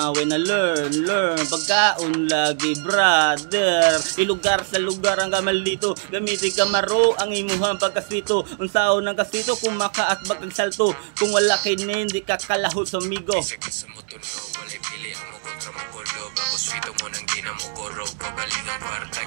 when I learn pagkaon lagi brother. Lugar sa lugar ang gamal dito. Gamitin kamaro ang imuhang pagkaswito. Unsaon ng kaswito kung makaatbag ang salto. Kung wala kay hindi ka kalahot sa migo. Bisag ka sa motor ko, walay pili ang mo kontra mo kolo. Bago swito mo nang di na mo koro. Pagaling ang par,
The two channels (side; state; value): left; silent; 62 dB below the other